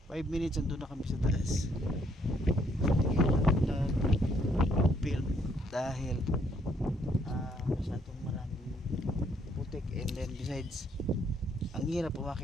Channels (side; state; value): both; normal; correlation 0.69